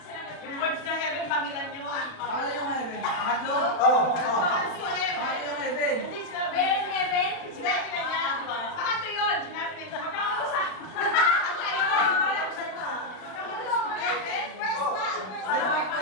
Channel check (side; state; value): right; late; 36 ms